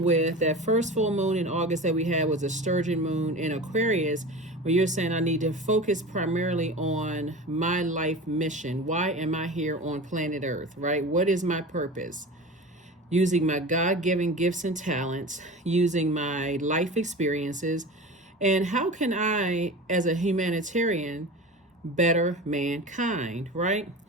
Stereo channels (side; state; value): both; normal; correlation 0.32